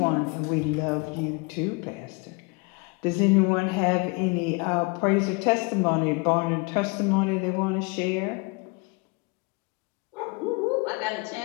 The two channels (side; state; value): right; quieter; 29.9 dB